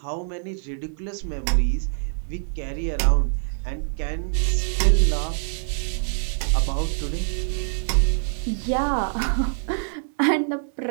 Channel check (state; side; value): silent; left; digital silence